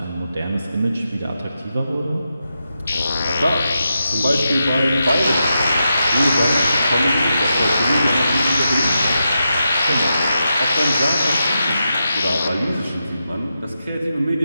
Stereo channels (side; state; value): both; inverted; correlation -0.87